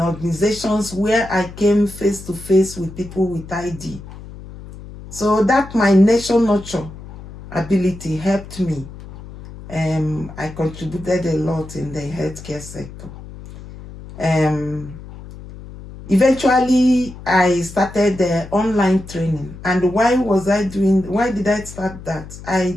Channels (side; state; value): left; noise; hum, 15 dB below the sound